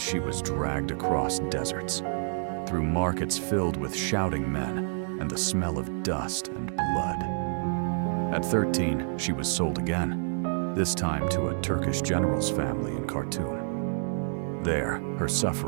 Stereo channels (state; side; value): silent; left; digital silence